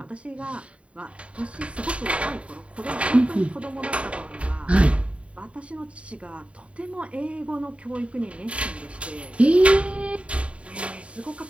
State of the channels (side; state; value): left; late; 0.062 ms